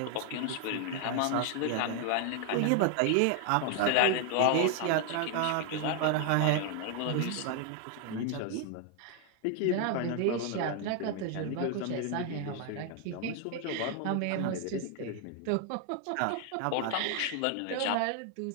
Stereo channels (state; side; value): different; both; correlation 0.00